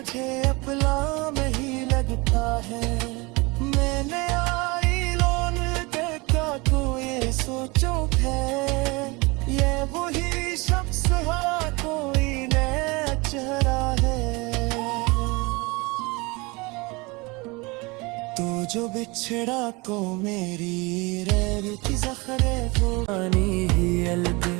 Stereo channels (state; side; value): quieter; left; 25.7 dB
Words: अपना नहीं लगता है। मैंने आई लोन देखा कोई सोचो है, ये वही शख्स है कोई नया चेहरा है। तू जो बिछड़ा को मेरी रैर की ज़ख़्रे फुरानी ही अलग।